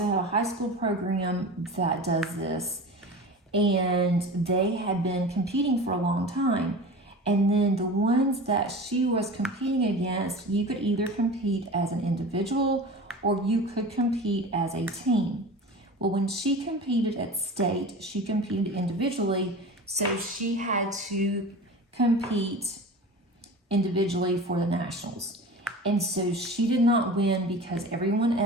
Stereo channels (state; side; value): normal; both; correlation 0.34